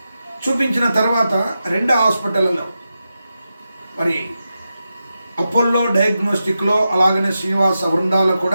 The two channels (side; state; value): both; inverted; correlation -0.90